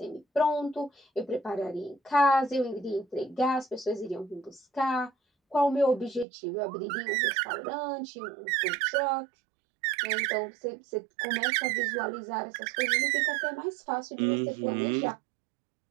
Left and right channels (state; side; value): drops out; left; at 6.2 s